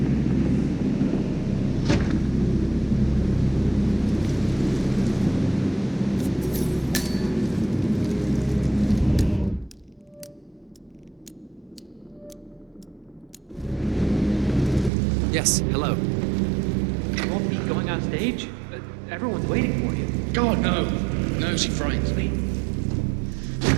Yes, hello. You won't be going on stage? Everyone's waiting for you. God, no. No, she frightens me.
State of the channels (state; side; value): drops out; left; at 14.9 s